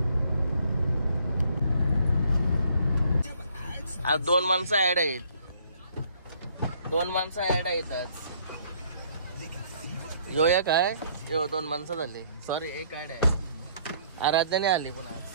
आज 2 माणसं ऍड आहेत. 2 माणसं ऍड आहेत आज. यो एक आहे, यो 2 माणसं झाली. सॉरी, एक ऍड आहे. आराध्याने आली पुन्हा.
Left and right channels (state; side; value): inverted; both; correlation -0.63